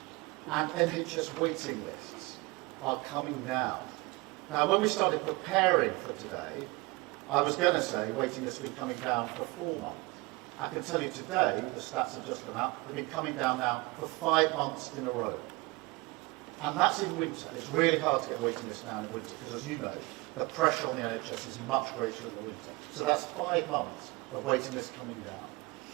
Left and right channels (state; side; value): quieter; left; 24.8 dB